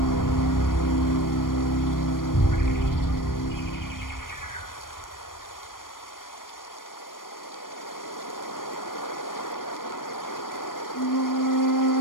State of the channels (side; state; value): right; late; 0.91 ms